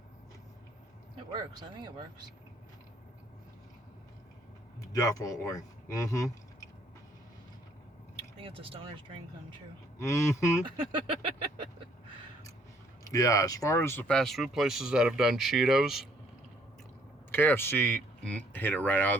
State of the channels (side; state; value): both; normal; correlation 0.64